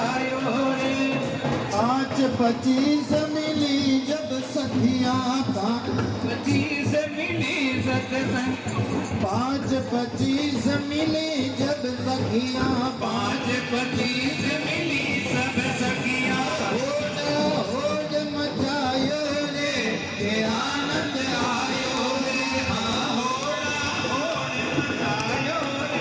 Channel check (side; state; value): both; identical; correlation 1.00